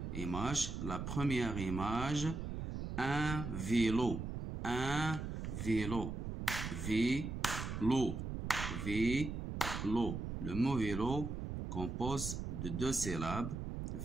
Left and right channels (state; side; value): noise; right; rumble, 5 dB below the sound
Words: images. La première image, un vélo, un vélo, vélo, vélo. Le mot vélo compose de deux syllabes,